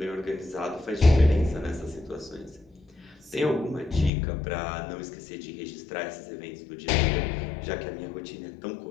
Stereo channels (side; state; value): right; drops out; at 4.1 s